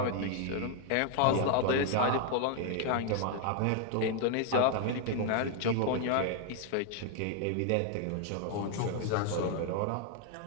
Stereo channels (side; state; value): both; different; correlation 0.00